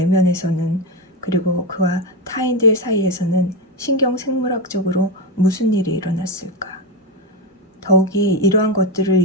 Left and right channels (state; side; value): normal; both; correlation 0.12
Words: 그리고 그와 타인들 사이에서는 신경생물학적으로 무슨 일이 일어났을까? 더욱이 이러한 것들을